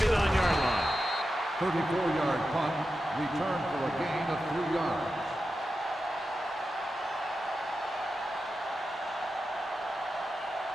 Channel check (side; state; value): both; normal; correlation 0.91